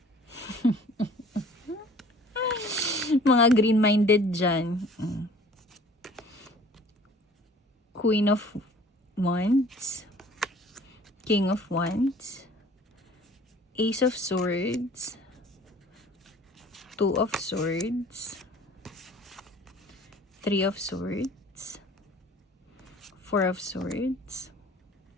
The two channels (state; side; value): normal; both; correlation 0.50